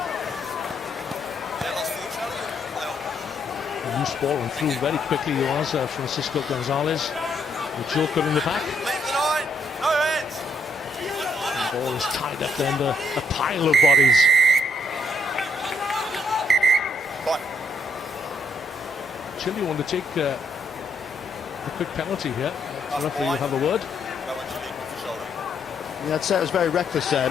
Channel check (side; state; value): both; normal; correlation 0.74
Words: A loose ball and through very quickly he was Francisco Gonzalez. The joker in the back. The ball is tied up there under a pile of bodies. Chile want to take a quick penalty here. The referee will have a word. Yeah, I'd say it was very reckless there.